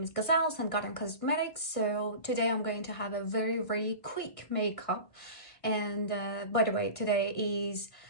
is Gazelle and Garden Cosmetics. So today I'm going to have a very quick makeup, and by the way, today is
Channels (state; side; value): late; right; 1.5 ms